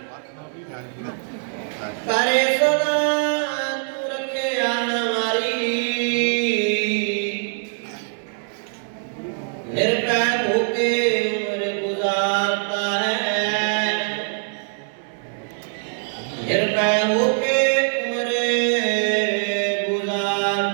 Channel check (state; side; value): silent; left; 64 dB below the other